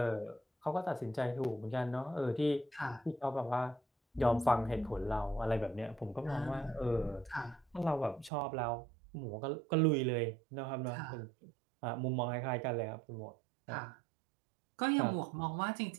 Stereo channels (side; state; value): left; drops out; at 8.3 s